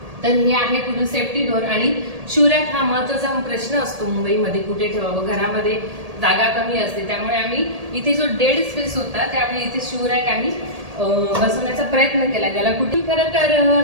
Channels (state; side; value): late; left; 1.8 ms